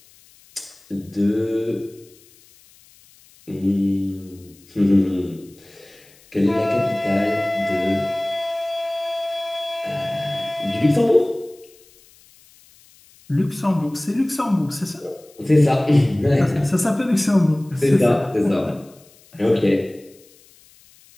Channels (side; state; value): left; noise; hiss, 28 dB below the sound